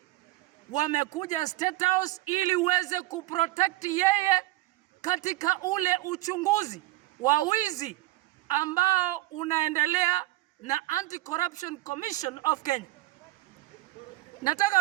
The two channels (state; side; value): quieter; left; 18.3 dB